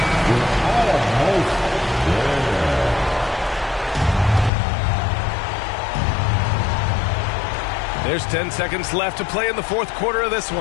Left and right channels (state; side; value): drops out; right; at 4.5 s